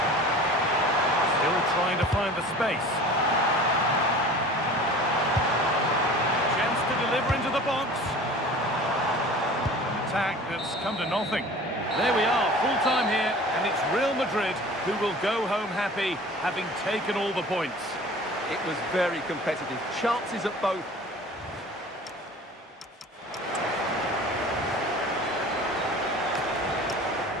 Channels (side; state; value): both; normal; correlation 0.42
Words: Still trying to find the space. Chance to deliver into the box. Attack that's come to nothing. There we are, full time here, and it's Real Madrid who will go home happy, having taken all the points. It was very competitive. Chances at both.